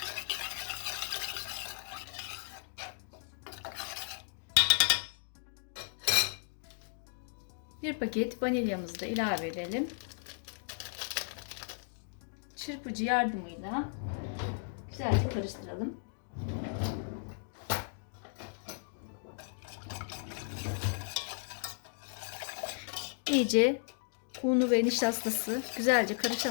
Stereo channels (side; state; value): right; silent; digital silence